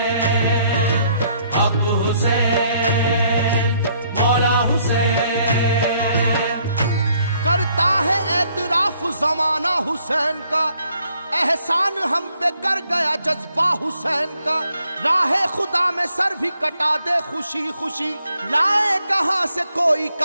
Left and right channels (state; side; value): inverted; both; correlation -0.68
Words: हक हुसैन मौला हुसैन। करता है एतराफ जमाना हुसैन का, एहसान हम पे कर गया जज्बा हुसैन का। राहे खुदा में सर भी कटा दे खुशी खुशी, लाए कहां से कोई